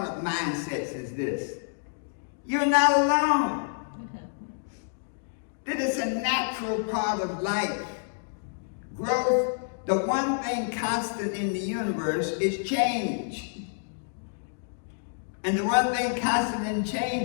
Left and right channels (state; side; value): silent; right; digital silence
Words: mindsets is this: you're not alone. That is a natural part of life. Growth, the one thing constant in the universe is change. And the one thing constant in